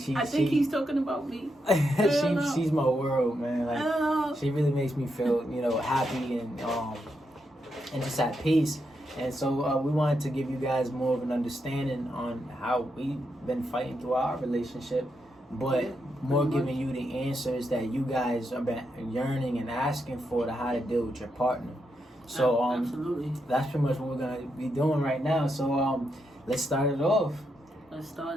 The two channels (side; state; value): both; normal; correlation 0.82